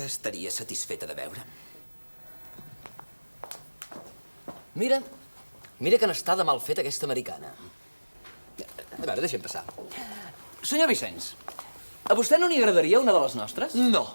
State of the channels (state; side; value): inverted; both; correlation -1.00